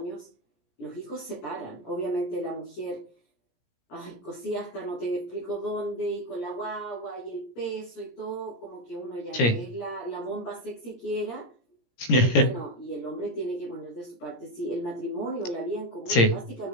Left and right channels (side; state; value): right; late; 17 ms